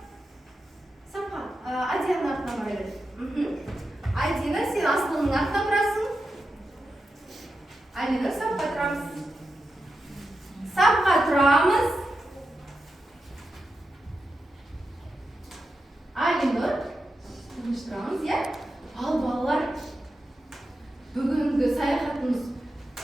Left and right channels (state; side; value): normal; both; correlation 0.89